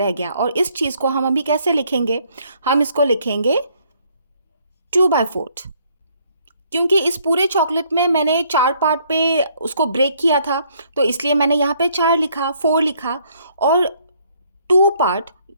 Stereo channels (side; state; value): both; inverted; correlation -0.66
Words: गया। और इस चीज़ को हम अभी कैसे लिखेंगे, हम इसको लिखेंगे 2/4, क्योंकि इस पूरे चॉकलेट में मैंने 4 पार्ट पे उसको ब्रेक किया था, तो इसलिए मैंने यहाँ पे 4 लिखा, 4 लिखा। और 2 पार्ट